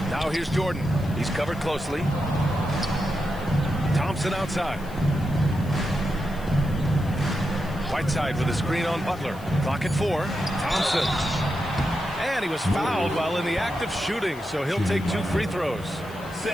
Now here's Jordan. He's covered closely. Thompson outside. Whiteside with a screen on Butler. Clock at 4. Thompson. And he was fouled while in the act of shooting, so he'll take 2 free throws.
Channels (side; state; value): left; noise; hiss, 23 dB below the sound